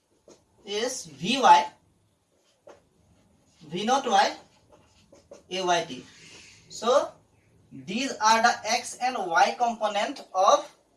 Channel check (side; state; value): both; identical; correlation 1.00